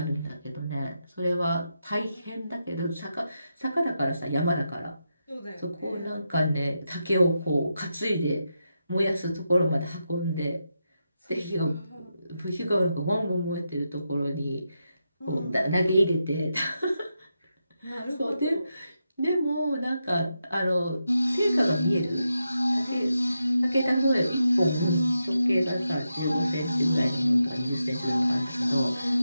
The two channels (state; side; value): inverted; both; correlation -0.86